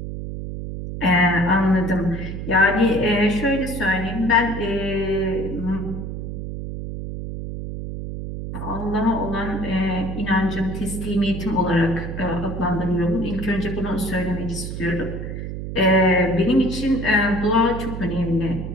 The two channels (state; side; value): noise; right; hum, 6 dB below the sound